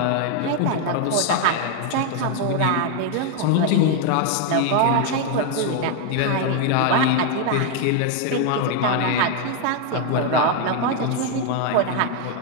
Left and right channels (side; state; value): both; different; correlation 0.01